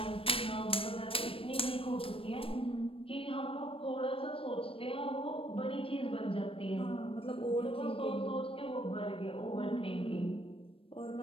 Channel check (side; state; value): right; late; 0.27 ms